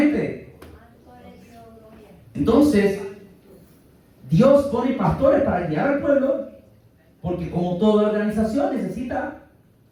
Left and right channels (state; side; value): identical; both; correlation 1.00